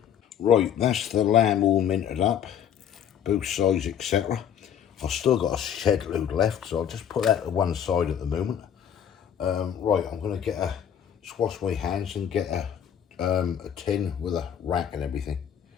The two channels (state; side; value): quieter; right; 8.9 dB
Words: Right, that's the lamb all minted up, both sides, etc. I've still got a shed load left, so I'll just put that to one side at the moment. Right, I'm going to just wash my hands and get a tin with a rack and everything.